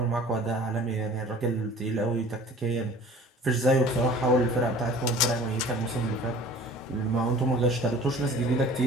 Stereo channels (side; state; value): both; normal; correlation 0.46